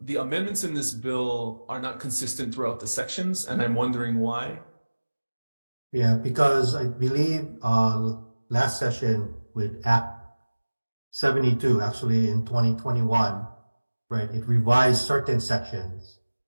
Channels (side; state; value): both; inverted; correlation -1.00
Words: amendments in this bill are not consistent throughout the sections, and I'm wondering why. Yeah, because I believe last session with Act 72, actually in 2021, right, it revised certain sections.